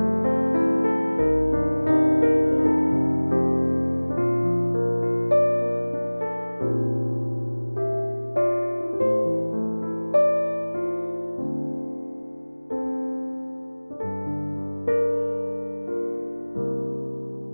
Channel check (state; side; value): inverted; both; correlation -1.00